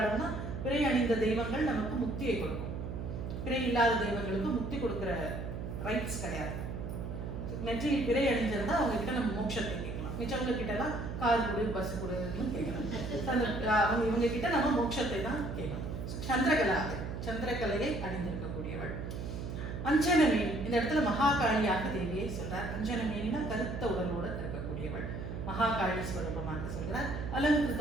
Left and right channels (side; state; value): right; noise; hum, 6 dB below the sound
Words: பிறை அணிந்த தெய்வங்கள் நமக்கு முக்தியை கொடுக்கும். பிறை இல்லாத தெய்வங்களுக்கு முக்தி கொடுக்கிற ரைட்ஸ் கிடையாது. நெற்றியில் பிறை அணிஞ்சிருந்தா அவங்க கிட்ட நம்ம மோட்சத்தை கேட்கலாம். மிச்சவங்க கிட்ட எல்லாம் கார் கொடு, பஸ் கொடுன்னு கேட்கலாம். இவங்க கிட்ட நம்ம மோட்சத்தை தான் கேட்கணும். சந்திரகலாதரி, சந்திரகலையை அணிந்திருக்கக்கூடியவள். அஞ்சனமேனி, இந்த இடத்துல மகாகாளியாக தேவியை சொல்றார். அஞ்சனமேனினா கருத்த உடலோடு இருக்கக்கூடியவள், மகாகாளி ஸ்வரூபமாக சொல்கிறார்.